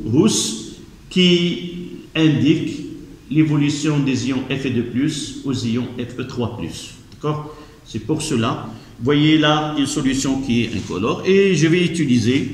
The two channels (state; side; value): identical; both; correlation 1.00